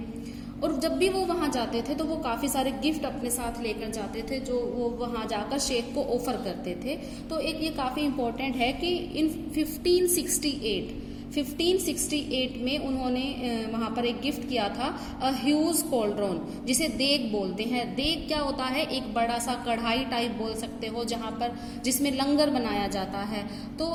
और जब भी वो वहाँ जाते थे तो वो काफ़ी सारे गिफ्ट अपने साथ लेकर जाते थे जो वो वहाँ जाकर शेख को ऑफर करते थे। तो एक ये काफ़ी इम्पोर्टेंट है कि इन 1568 में उन्होंने वहाँ पर एक गिफ्ट किया था, अ ह्यूज कॉल्ड्रोन, जिसे देग बोलते हैं। देग क्या होता है? एक बड़ा सा कढ़ाई टाइप बोल सकते हो, जहाँ पर जिसमें लंगर बनाया जाता है। तो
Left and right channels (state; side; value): identical; both; correlation 1.00